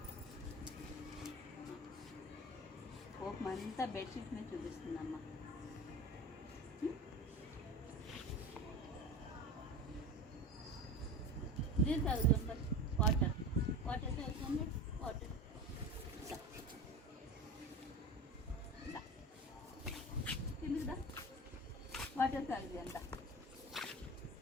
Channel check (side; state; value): both; normal; correlation 0.30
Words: కోపం అంతా బెడ్షీట్ మీద చూపిస్తుందమ్మా. ఇది తాగుతుంది వాటర్ వాటర్ తాగుతుంది వాటర్. తిందా వాటర్ తాగుది అంత.